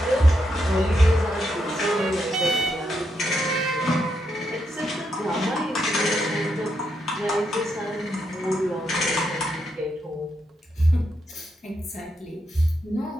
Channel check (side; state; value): both; normal; correlation 0.81